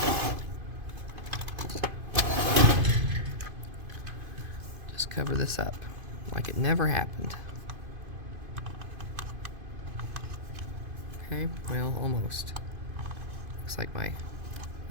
just cover this up like it never happened. Okay, well, almost. Looks like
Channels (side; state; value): left; late; 2.5 ms